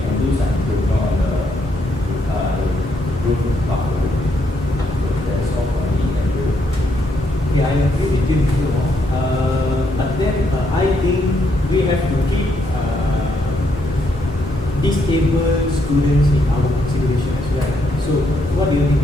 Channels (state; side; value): normal; both; correlation 0.75